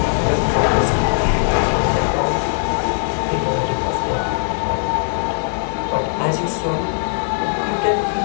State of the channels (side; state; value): right; silent; digital silence